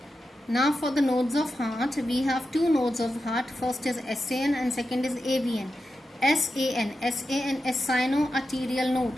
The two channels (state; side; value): normal; both; correlation 0.90